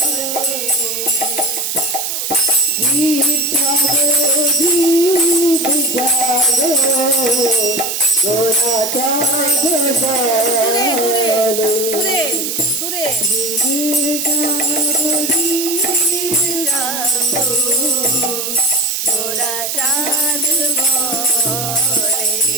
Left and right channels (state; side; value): noise; right; hiss, 3 dB below the sound